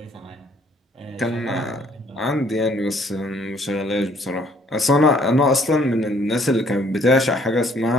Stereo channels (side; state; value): both; normal; correlation 0.62